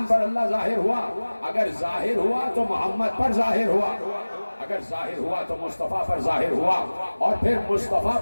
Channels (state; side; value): inverted; both; correlation -1.00